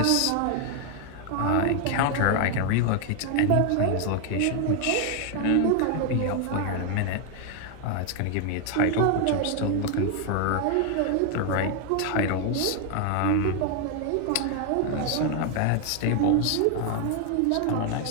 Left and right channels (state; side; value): different; both; correlation 0.00